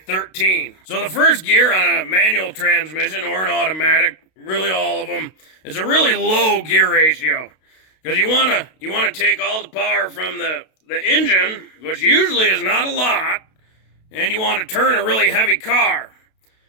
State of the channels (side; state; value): right; late; 32 ms